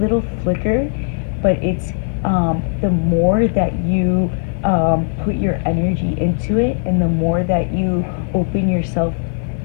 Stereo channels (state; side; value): silent; right; 60 dB below the other